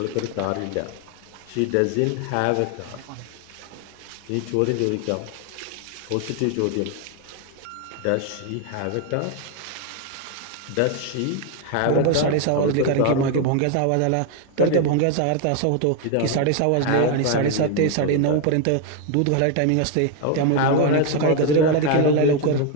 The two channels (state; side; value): different; both; correlation 0.01